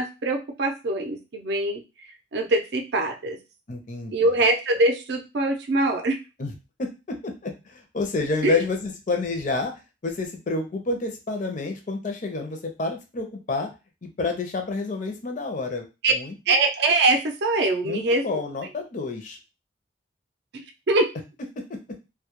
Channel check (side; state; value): both; normal; correlation 0.07